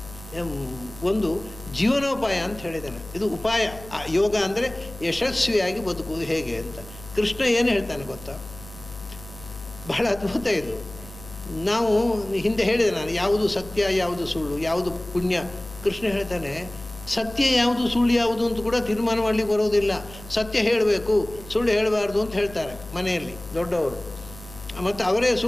ಒಂದು ಜೀವನೋಪಾಯ ಅಂತ ಹೇಳಿದ್ದಾನೆ. ಇದು ಉಪಾಯ. ಯೋಗ ಅಂದರೆ ಯಶಸ್ವಿಯಾಗಿ ಬದುಕುವುದು ಹೇಗೆ ಅಂತ. ಕೃಷ್ಣ ಏನು ಹೇಳ್ತಾನೆ ಗೊತ್ತಾ? ಬಹಳ ಅದ್ಭುತ ಇದು. ನಾವು ಹಿಂದೆ ಹೇಳಿದೆ ನಾನು, ಯಾವುದು ಸತ್ಯ, ಯಾವುದು ಸುಳ್ಳು, ಯಾವುದು ಪುಣ್ಯ. ಕೃಷ್ಣ ಹೇಳ್ತಾನೆ ಸತ್ಯ ಯಾವುದು ಸುಳ್ಳು ಯಾವುದು ಅಂತ ಕೂಡ ತೀರ್ಮಾನ ಮಾಡಲಿಕ್ಕೆ ಬರೋದಿಲ್ಲ. ಸತ್ಯ ಹೇಳಬೇಕು, ಸುಳ್ಳು ಹೇಳಬಾರ್ದು ಅಂತ ಹೇಳ್ತಾರೆ ಮನೆಯಲ್ಲಿ ದೊಡ್ಡವರು. ಮತ್ತು ಅವರೇ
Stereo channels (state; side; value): noise; left; hum, 16 dB below the sound